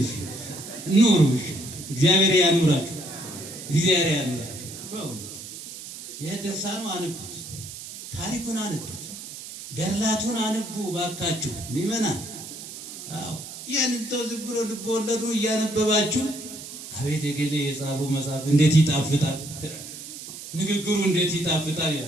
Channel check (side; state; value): right; noise; hiss, 12 dB below the sound